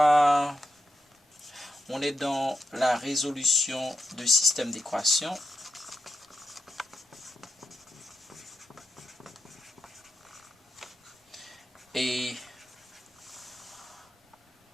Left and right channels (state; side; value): normal; both; correlation 0.84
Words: est dans la résolution du système d'équations. Et